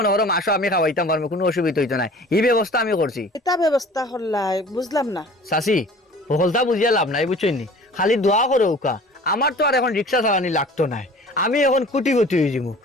করো মাসও আমি খাওয়াইতাম পারবো কোনো অসুবিধা হইতো না এই ব্যবস্থা আমি করছি এটা ব্যবস্থা করলাই বুঝলাম না চাচি সকলটা বুঝিয়া লাভ নাই বুঝছো নি খালি দোয়া করো উকা আমার তো আর এখন রিক্সা চালানি লাগতো না আমি এখন কুটিপতি হয়ে যাবো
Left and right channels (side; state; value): both; normal; correlation 0.46